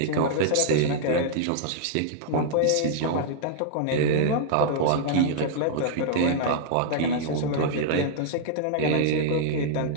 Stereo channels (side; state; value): both; different; correlation -0.01